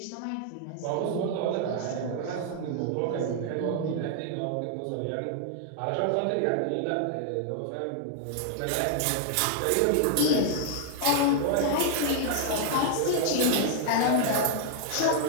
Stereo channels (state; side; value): different; both; correlation 0.00